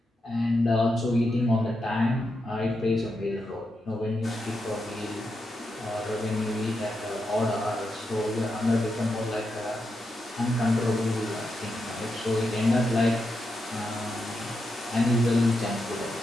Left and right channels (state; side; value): normal; both; correlation 0.85